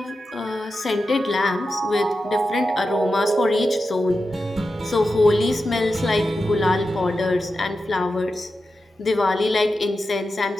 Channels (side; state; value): both; normal; correlation 0.90